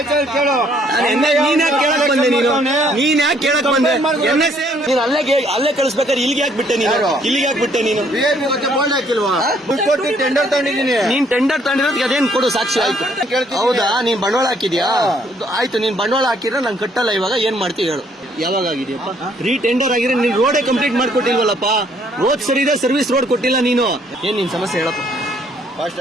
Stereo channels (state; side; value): normal; both; correlation 0.66